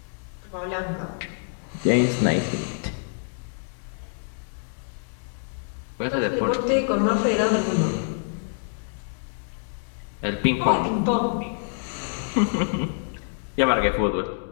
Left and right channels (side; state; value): right; silent; digital silence